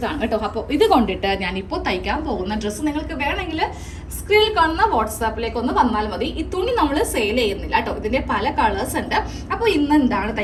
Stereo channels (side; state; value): both; identical; correlation 1.00